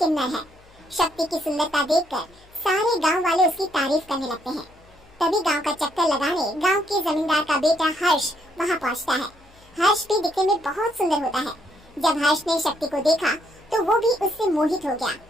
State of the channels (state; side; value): noise; left; hum, 28 dB below the sound